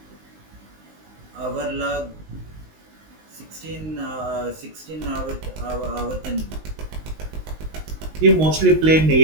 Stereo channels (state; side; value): late; left; 19 ms